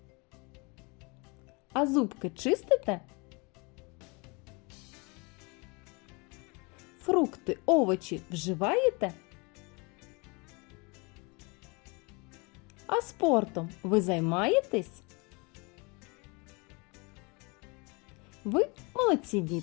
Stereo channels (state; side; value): quieter; right; 29.2 dB